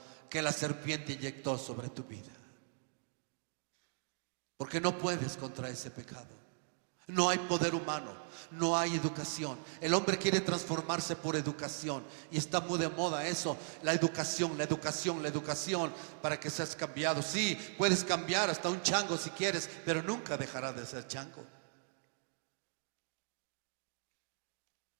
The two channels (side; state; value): left; silent; digital silence